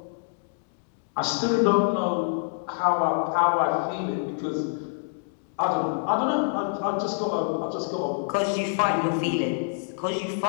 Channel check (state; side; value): silent; right; digital silence